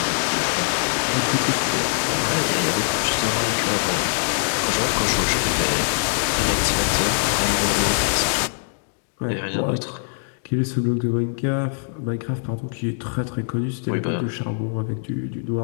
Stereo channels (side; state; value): right; silent; digital silence